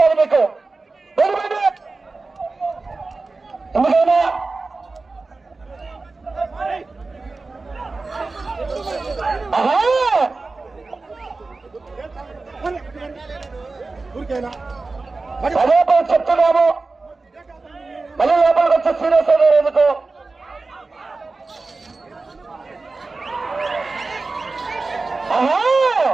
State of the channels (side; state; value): left; quieter; 3.7 dB